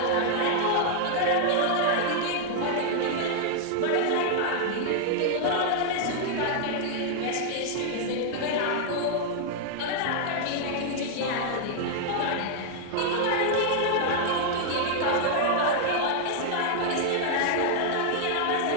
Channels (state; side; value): different; both; correlation 0.00